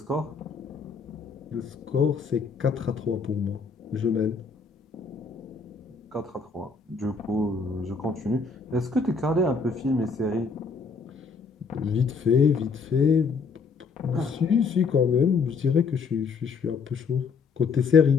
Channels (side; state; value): right; quieter; 5.0 dB